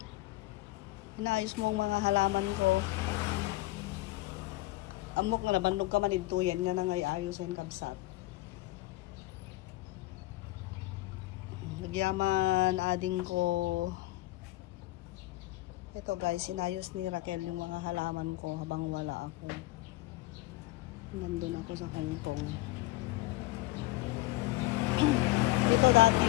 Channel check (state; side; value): quieter; right; 19.2 dB